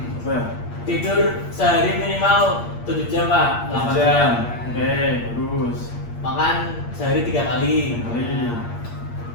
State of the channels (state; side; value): late; right; 8.5 ms